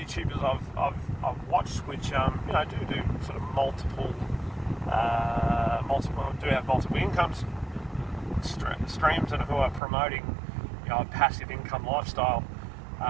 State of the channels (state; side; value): drops out; left; at 9.8 s